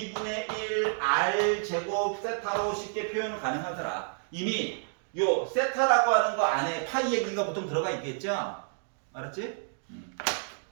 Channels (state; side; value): silent; left; digital silence